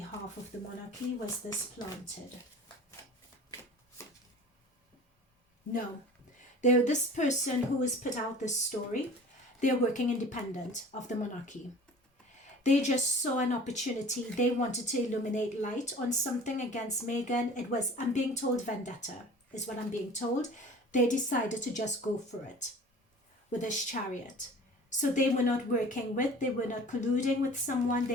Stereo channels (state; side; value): normal; both; correlation 0.43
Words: of the monarchy? Was this planted? No. This person who has put out this story, they're working independent of the monarchy. They just saw an opportunity. They wanted to illuminate light on something against Meghan. It was, I'm being told, vendetta is what I'm being told. They decided to just go for it with this Chariot. So they were not working with, they were not colluding with someone.